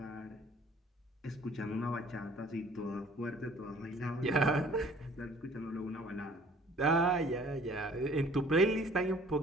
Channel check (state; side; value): normal; both; correlation 0.54